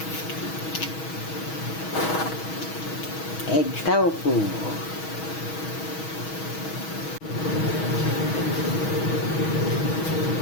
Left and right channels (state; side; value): late; right; 6.3 ms